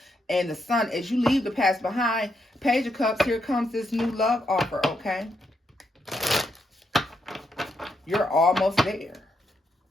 and the Sun, as you leave the past behind, Page of Cups, here comes this new love offer, okay? You're almost there.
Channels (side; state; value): both; normal; correlation 0.80